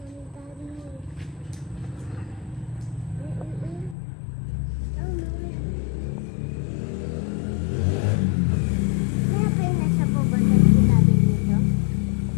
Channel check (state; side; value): drops out; right; at 4.0 s